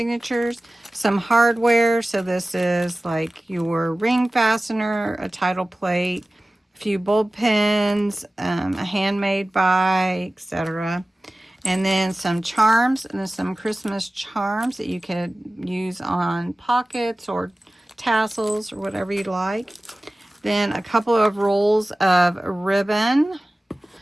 some hardware. So this is like your ring fastener, a title plate, a few bulb pens, a handmade die, etc. And then some charms, and then some Christmas charms that you could use on pockets or tassels or whatever you'd like. Then a couple of rolls of ribbon.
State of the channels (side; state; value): both; normal; correlation 0.97